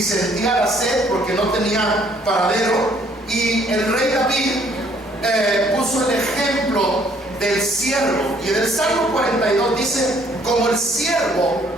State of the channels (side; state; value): both; normal; correlation 0.63